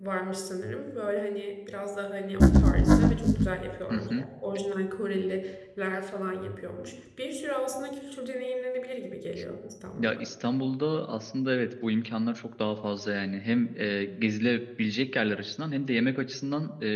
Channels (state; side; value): identical; both; correlation 1.00